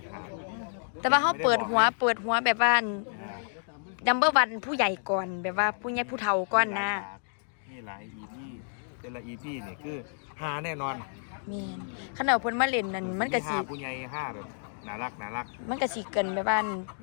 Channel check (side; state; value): right; silent; digital silence